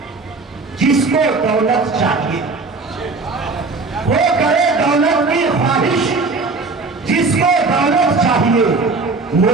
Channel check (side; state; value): left; quieter; 3.9 dB